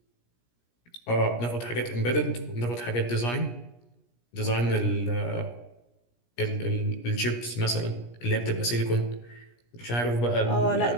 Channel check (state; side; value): late; right; 17 ms